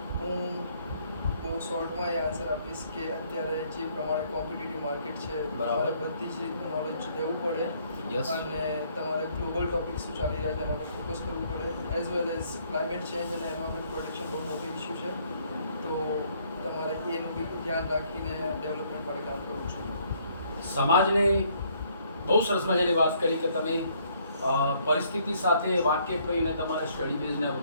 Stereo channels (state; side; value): inverted; both; correlation -0.66